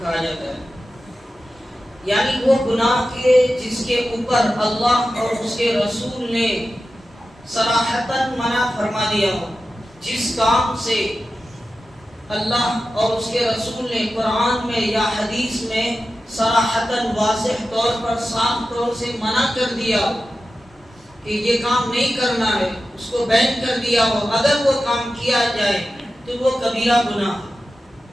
جاتا ہے، یعنی وہ گناہ کے جس کے اوپر اللہ اور اس کے رسول نے صراحتاً منع فرما دیا ہو، جس کام سے اللہ اور اس کے رسول نے قرآن میں یا حدیث میں صراحتاً واضح طور پر صاف طور سے منع کر دیا ہو کہ یہ کام نہیں کرنا ہے، اس کو بین کر دیا ہو، اگر وہ کام کیا جائے تو وہ کبیرہ گناہ ہے۔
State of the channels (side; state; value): both; normal; correlation 0.93